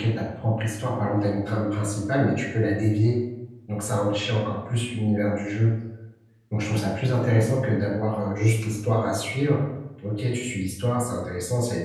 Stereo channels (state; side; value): identical; both; correlation 1.00